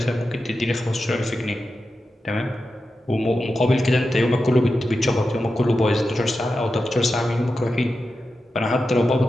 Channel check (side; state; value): both; normal; correlation 0.91